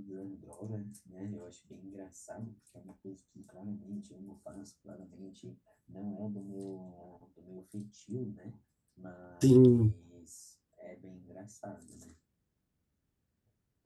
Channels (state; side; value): identical; both; correlation 1.00